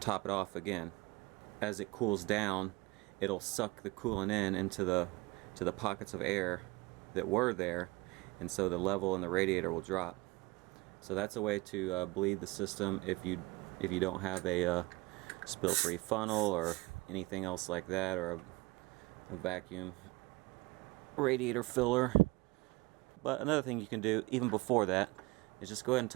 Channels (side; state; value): left; quieter; 23.0 dB